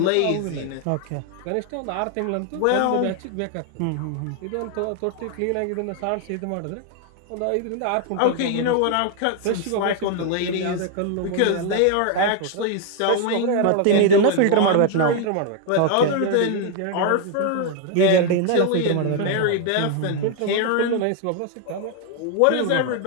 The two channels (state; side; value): different; both; correlation 0.01